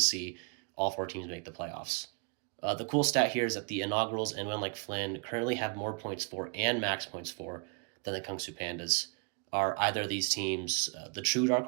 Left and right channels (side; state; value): left; quieter; 37.7 dB